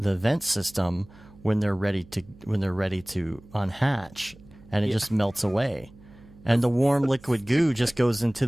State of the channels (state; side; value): noise; right; hum, 23 dB below the sound